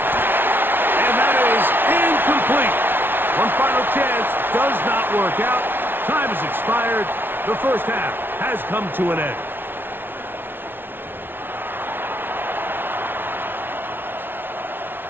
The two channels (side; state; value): left; late; 0.10 ms